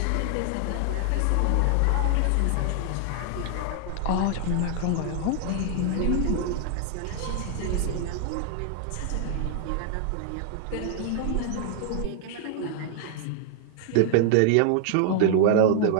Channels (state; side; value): different; both; correlation 0.00